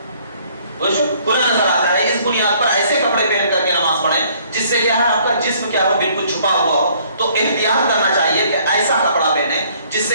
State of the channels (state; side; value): inverted; both; correlation -0.61